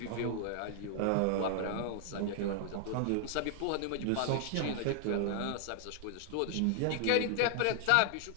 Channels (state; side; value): different; both; correlation 0.00